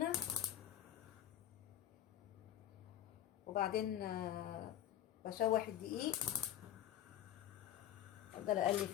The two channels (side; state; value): right; quieter; 11.5 dB